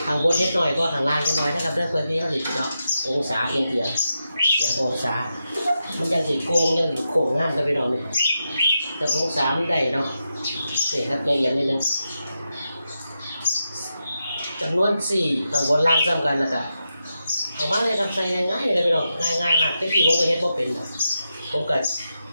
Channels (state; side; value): inverted; both; correlation -0.88